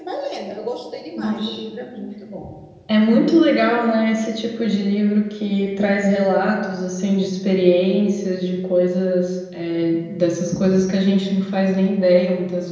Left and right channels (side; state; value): both; identical; correlation 1.00